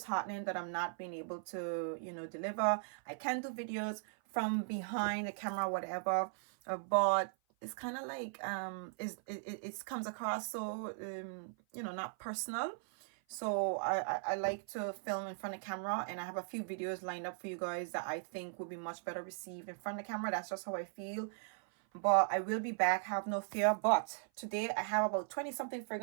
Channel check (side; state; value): left; silent; 52 dB below the other